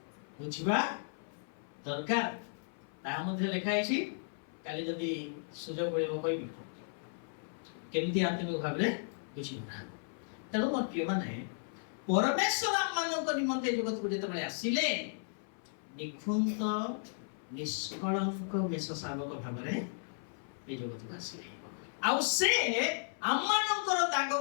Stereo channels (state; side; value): silent; right; 54 dB below the other